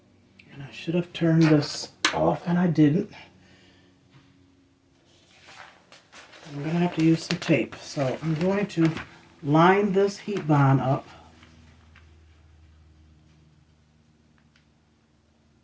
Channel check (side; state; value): both; identical; correlation 1.00